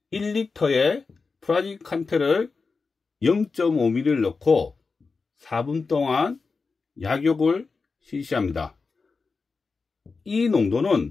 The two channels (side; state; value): right; quieter; 4.5 dB